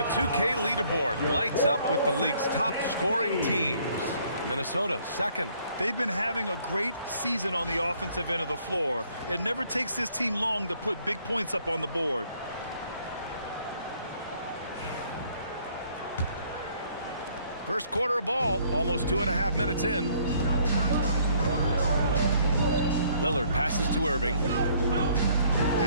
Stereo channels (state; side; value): inverted; both; correlation -0.63